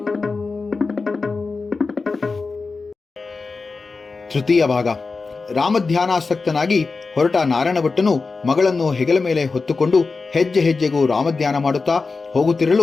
ತೃತೀಯ ಭಾಗ. ರಾಮಧ್ಯಾನಾಸಕ್ತನಾಗಿ ಹೊರಟ ನಾರಾಯಣ ಭಟ್ಟನು ಮಗಳನ್ನು ಹೆಗಲ ಮೇಲೆ ಹೊತ್ತುಕೊಂಡು ಹೆಜ್ಜೆ ಹೆಜ್ಜೆಗೂ ರಾಮಧ್ಯಾನ ಮಾಡುತ್ತಾ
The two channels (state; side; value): quieter; right; 4.2 dB